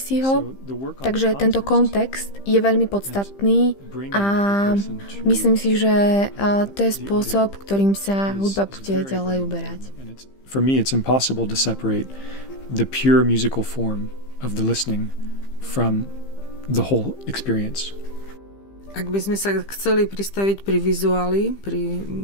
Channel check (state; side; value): late; right; 15 ms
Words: ho. Takže tento kontext je veľmi podstatný a myslím si, že to je spôsob, ktorým sa hudba bude ďalej uberať. For me, it's impossible to separate the pure musical form of the listening from the whole experience. Ak by sme sa chceli pristaviť pri vizuáli, pri